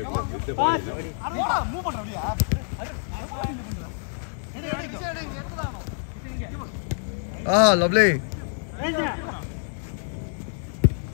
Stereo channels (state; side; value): silent; right; digital silence